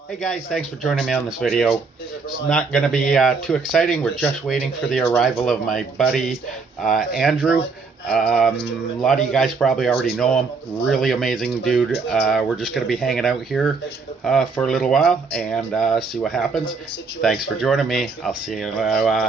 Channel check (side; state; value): left; quieter; 4.6 dB